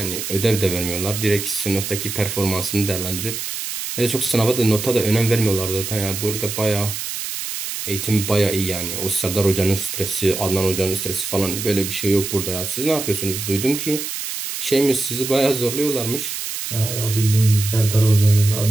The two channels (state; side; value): noise; right; hiss, 5 dB below the sound